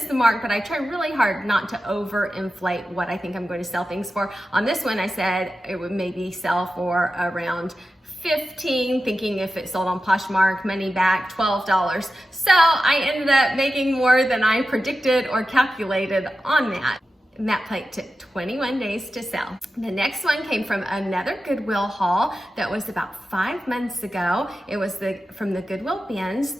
the mark, but I try really hard not to overinflate what I think I'm going to sell things for. On this one, I said it would maybe sell for around $15, thinking if it sold on Poshmark, money back, $12. So I ended up making more than I predicted or calculated on that. And that plate took 21 days to sell. The next one came from another Goodwill haul that was about 5 months ago. It was from the Goodwill bins.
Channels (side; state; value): both; normal; correlation 0.92